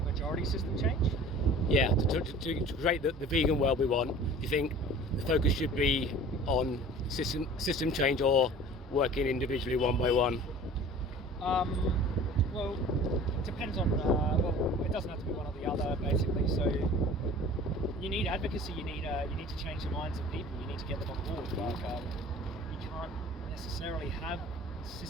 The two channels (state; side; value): normal; both; correlation 0.44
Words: majority system change? Yeah, to create the vegan world we want, do you think the focus should be on system change or working individually one by one? Well, it depends on, well, it doesn't have to be one or the other, basically. So you need advocacy, you need to change the minds of people, you need to get them on board. Like, you can't necessarily have